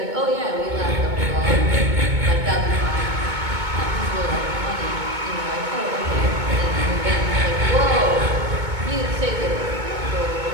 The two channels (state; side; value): late; left; 2.2 ms